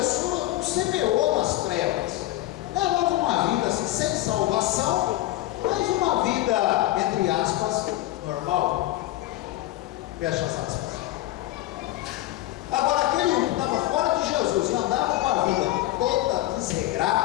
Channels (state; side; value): quieter; right; 16.0 dB